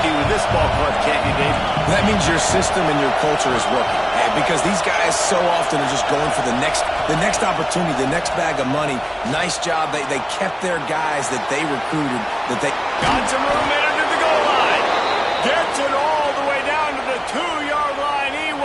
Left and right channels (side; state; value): both; identical; correlation 1.00